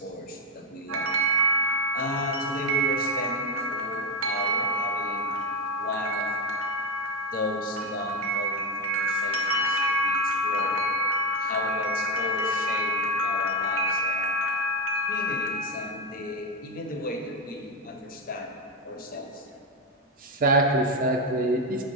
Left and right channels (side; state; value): both; normal; correlation 0.10